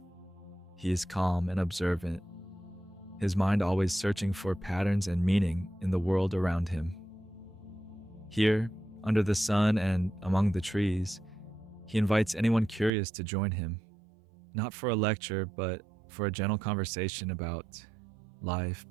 He is calm and observant, his mind always searching for patterns and meaning in the world around him. Here, under the sun and among the trees, he invites anyone curious to join him, not for a lecture, but for a gentle conversation about life,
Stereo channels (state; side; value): drops out; left; at 12.9 s